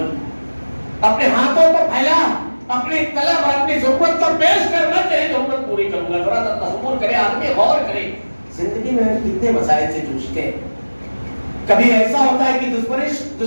اپنے ہاتھوں کو پھیلا, اپنی طلب اور اپنی ضرورت کو پیش کرنا, تیری ضرورت پوری کروں گا. ذرا تصور کرے آدمی, غور کرے, زندگی میں کتنے مسائل سے جوجھتے ہیں. کبھی ایسا ہوتا ہے کہ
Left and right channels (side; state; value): both; inverted; correlation -1.00